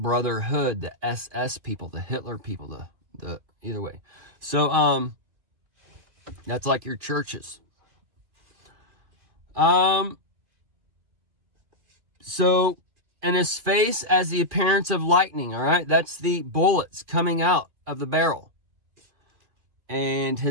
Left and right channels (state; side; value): late; left; 2.4 ms